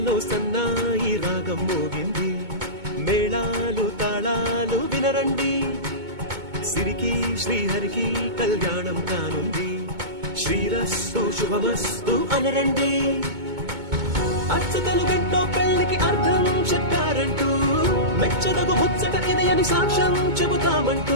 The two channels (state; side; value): late; left; 2.2 ms